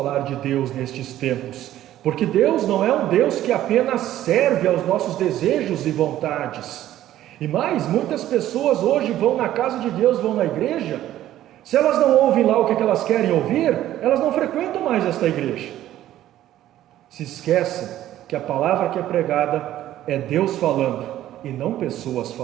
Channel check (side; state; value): left; quieter; 13.1 dB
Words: de Deus nestes tempos, porque Deus não é um Deus que apenas serve aos nossos desejos e vontades. E mais, muitas pessoas hoje vão na casa de Deus, vão na igreja. Se elas não ouvem lá o que elas querem ouvir, elas não frequentam mais esta igreja. Se esquecem que a palavra que é pregada é Deus falando e não pessoas